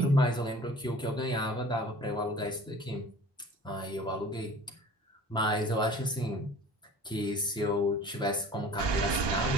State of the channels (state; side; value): normal; both; correlation 0.44